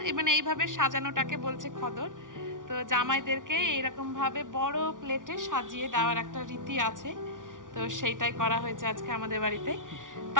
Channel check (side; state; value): left; late; 0.88 ms